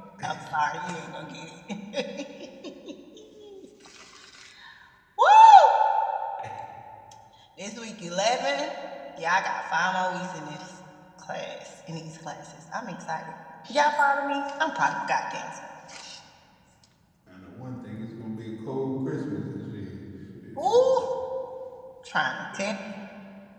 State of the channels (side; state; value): both; identical; correlation 1.00